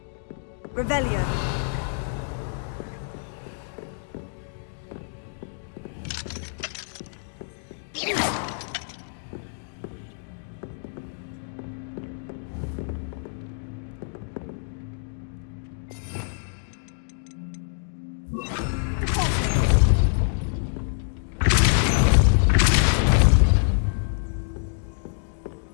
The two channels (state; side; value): silent; right; digital silence